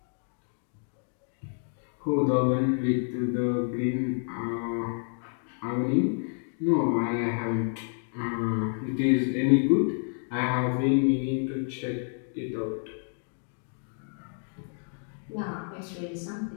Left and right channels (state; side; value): silent; right; 55 dB below the other